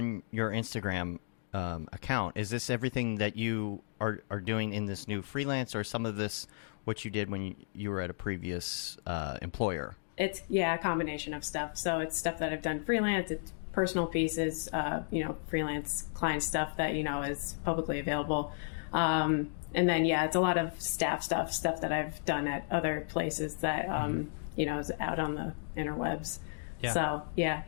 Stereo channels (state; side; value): silent; right; digital silence